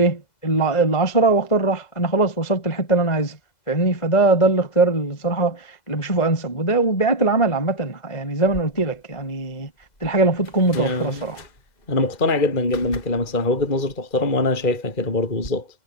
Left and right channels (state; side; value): late; right; 2.0 ms